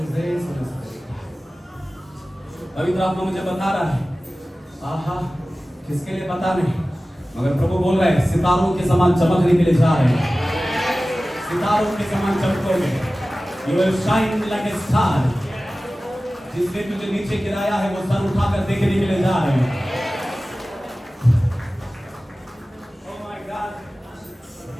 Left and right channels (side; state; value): both; normal; correlation 0.96